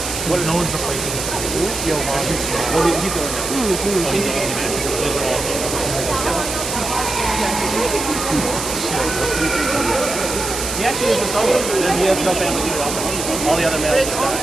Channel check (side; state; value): right; noise; hiss, 5 dB below the sound